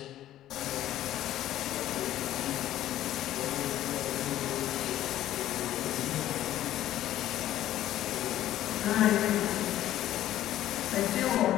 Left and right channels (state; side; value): quieter; right; 13.1 dB